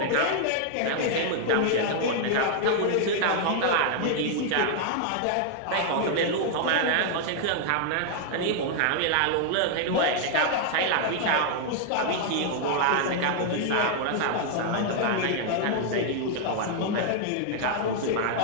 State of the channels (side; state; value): both; different; correlation 0.00